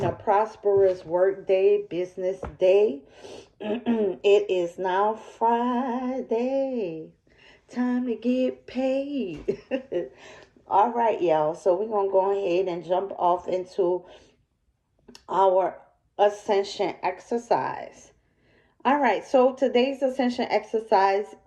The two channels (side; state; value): both; identical; correlation 1.00